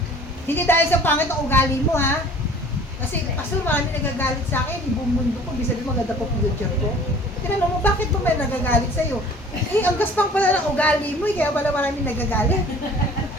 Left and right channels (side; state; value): both; normal; correlation 0.49